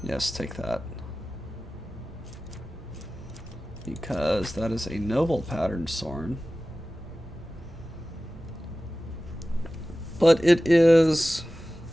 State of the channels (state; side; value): normal; both; correlation 0.96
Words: Yes, take that. Because that is a noble pattern sword. But it is